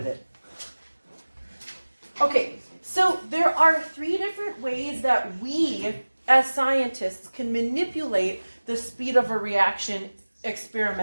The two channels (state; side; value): inverted; both; correlation -1.00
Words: it. Okay, so there are 3 different ways that we, as scientists, can manipulate the speed of a reaction